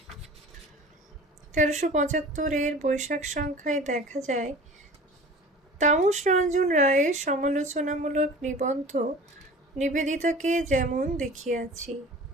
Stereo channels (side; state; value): both; normal; correlation 0.41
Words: 1375 বৈশাখ সংখ্যায় দেখা যায় তামস রঞ্জন রায়ের সমালোচনামূলক নিবন্ধ নিবেদিতাকে যেমন দেখিয়াছি।